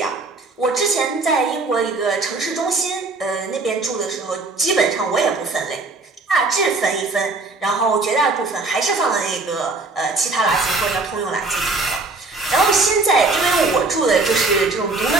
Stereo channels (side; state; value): left; quieter; 3.5 dB